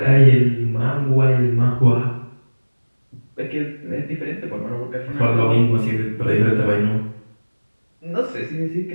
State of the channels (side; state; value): both; inverted; correlation -1.00